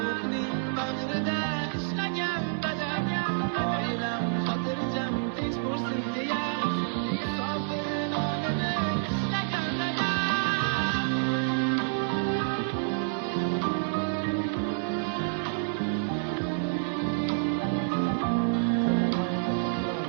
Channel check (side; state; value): left; silent; 59 dB below the other